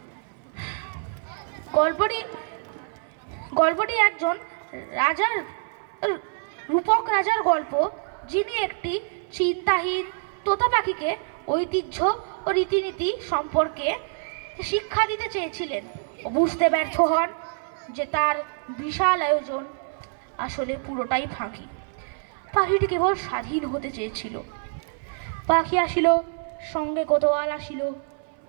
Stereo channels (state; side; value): silent; left; 57 dB below the other